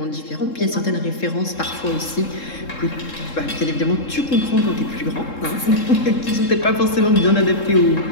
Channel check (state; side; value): late; right; 3.7 ms